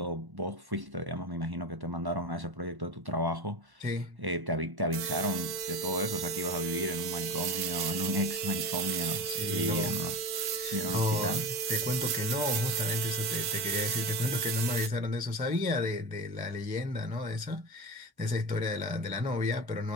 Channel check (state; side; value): late; left; 1.1 ms